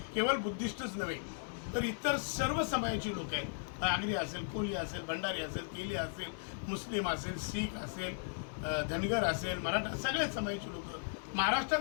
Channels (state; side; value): silent; right; digital silence